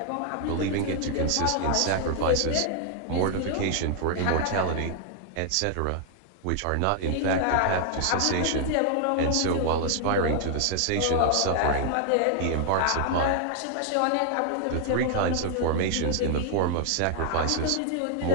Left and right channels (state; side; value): different; both; correlation -0.01